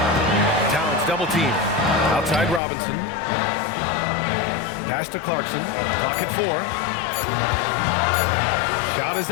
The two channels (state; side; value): drops out; right; at 2.6 s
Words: Towns double team. Outside Robinson. Pass to Clarkson. Clock at 4. Shot is